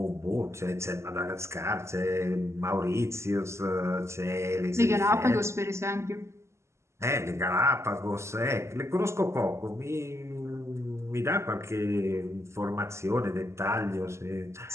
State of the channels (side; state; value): left; late; 0.13 ms